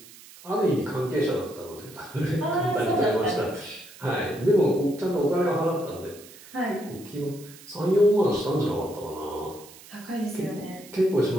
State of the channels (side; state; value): right; noise; hiss, 20 dB below the sound